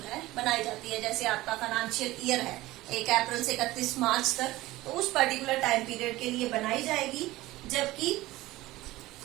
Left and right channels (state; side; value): quieter; left; 17.9 dB